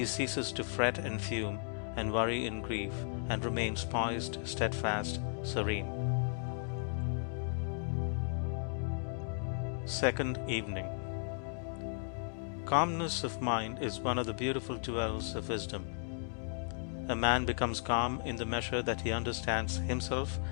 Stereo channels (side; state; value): right; silent; digital silence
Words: ceases to fret and fume and worry and grieve, and remains poised, steadfast, serene. Second evening. Calmness of mind is one of the beautiful jewels of wisdom. A man becomes calm in the measure that he understands himself